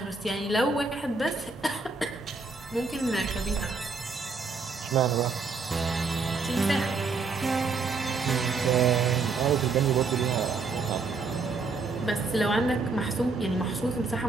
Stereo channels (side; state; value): left; quieter; 4.3 dB